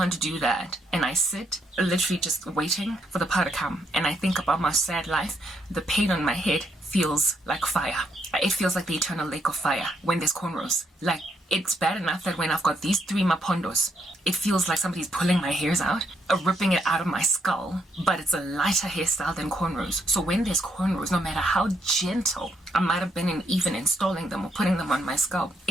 do that and I sit literally just waiting for the power to come and I think about my sad life, the pain on my head feels like fire. It feels like the eternal lake of fire when there's cornrows. Like It's bad enough that when I've got these 3 mapondos, it feels like somebody's pulling my hairs out, ripping it out of my skull, but it's a lighter hairstyle than cornrows. So when there's cornrows, no matter how gentle I might have been in even installing them or putting them on my scalp,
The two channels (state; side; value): normal; both; correlation 0.76